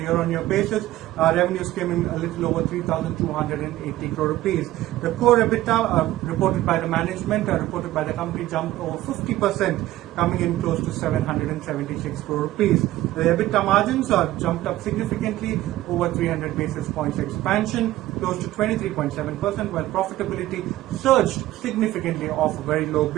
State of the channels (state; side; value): quieter; left; 15.6 dB